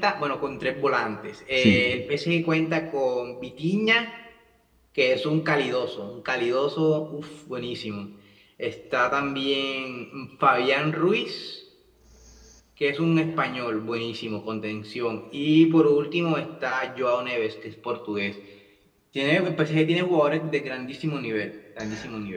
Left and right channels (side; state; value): both; identical; correlation 1.00